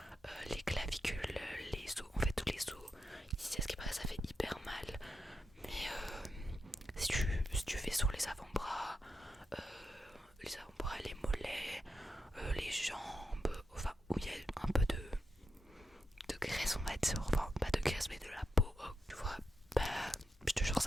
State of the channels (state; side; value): normal; both; correlation 0.86